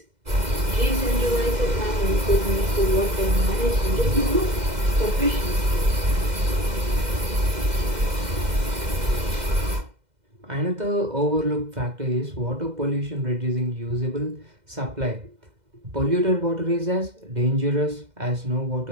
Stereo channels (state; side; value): late; left; 2.0 ms